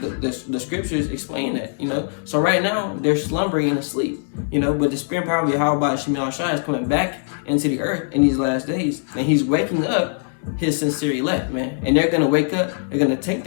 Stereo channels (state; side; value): silent; right; digital silence